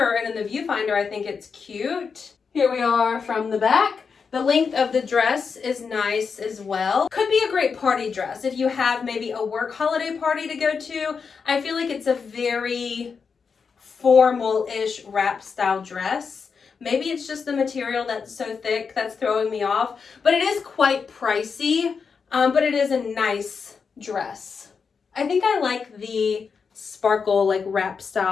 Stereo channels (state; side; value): quieter; right; 5.6 dB